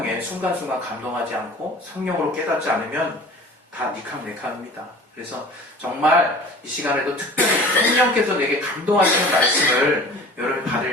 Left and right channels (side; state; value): both; normal; correlation 0.43